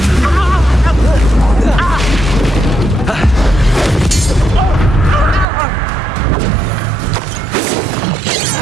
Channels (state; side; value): drops out; left; at 5.5 s